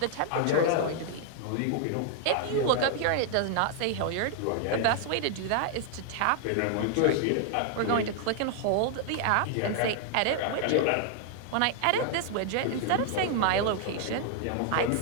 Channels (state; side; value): different; both; correlation 0.00